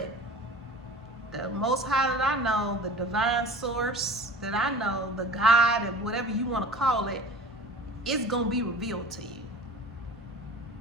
the Most High that I know, the divine source that I know, the God, and whatever you want to call it, it's gonna be revealed to you.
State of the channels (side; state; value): both; normal; correlation 0.39